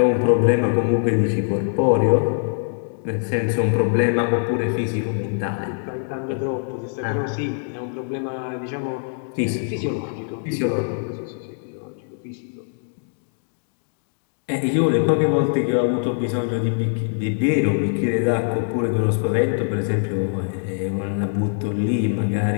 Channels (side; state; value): right; silent; digital silence